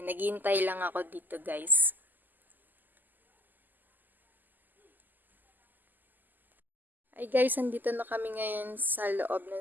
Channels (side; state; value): left; late; 0.087 ms